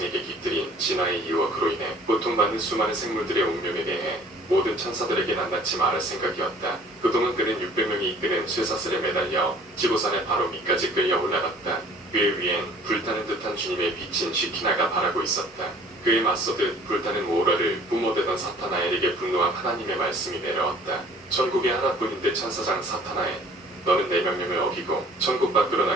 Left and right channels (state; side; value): normal; both; correlation 0.52